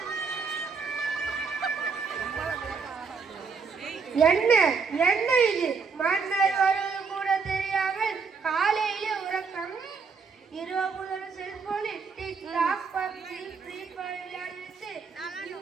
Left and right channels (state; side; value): quieter; left; 5.2 dB